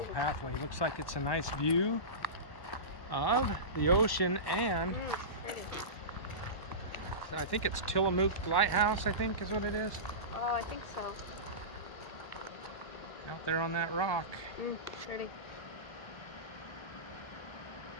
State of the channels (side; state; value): right; late; 1.1 ms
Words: pathway. Looks like it's a nice view of the ocean, and I think it's Tillamook Lighthouse, I think is what it is. Oh, I think so. Out there on that rock. Pretty.